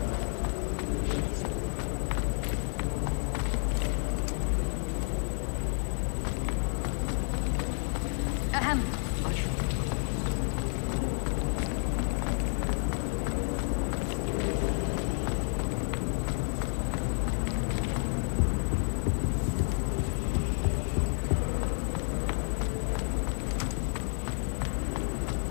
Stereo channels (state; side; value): silent; right; 58 dB below the other